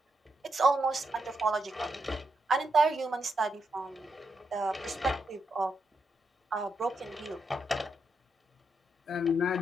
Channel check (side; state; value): both; normal; correlation 0.83